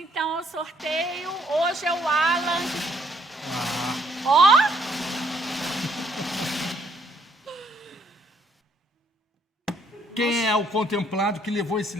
ao sorteio. Hoje é o Alan. Ó! Quem é o contemplado que levou esse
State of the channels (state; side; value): normal; both; correlation 0.68